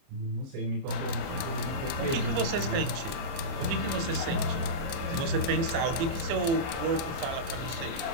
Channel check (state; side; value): late; left; 30 ms